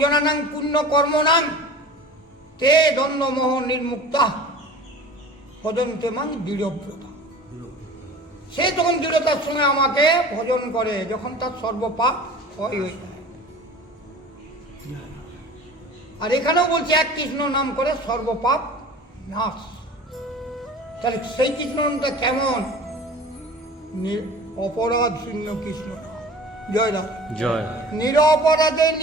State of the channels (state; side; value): normal; both; correlation 0.41